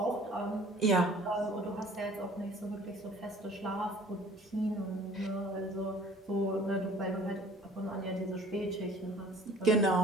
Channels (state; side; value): normal; both; correlation 0.50